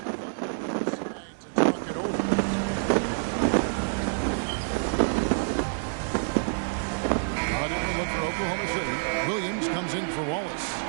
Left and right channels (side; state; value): left; silent; 60 dB below the other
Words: Oklahoma City. Williams comes in for Wallace.